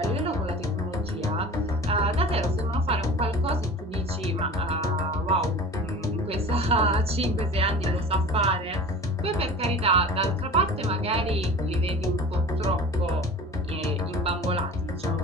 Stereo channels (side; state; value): both; normal; correlation 0.38